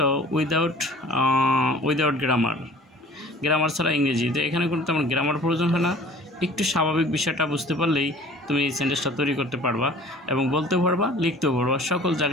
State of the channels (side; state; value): both; normal; correlation 0.48